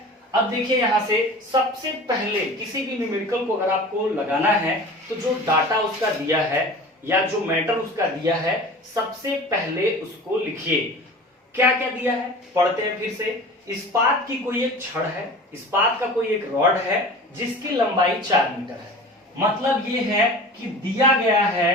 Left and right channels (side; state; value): both; normal; correlation 0.38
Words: अब देखिए यहां से सबसे पहले किसी भी न्यूमेरिकल को अगर आपको लगाना है तो जो डाटा उसका दिया है या जो मैटर उसका दिया है, सबसे पहले उसको लिखिए। क्या क्या दिया है पढ़ते हैं फिर से। इस्पात की कोई एक छड़ है, इस्पात का कोई एक रॉड है जिसकी लंबाई 4 मीटर है। मतलब ये है कि दिया गया है,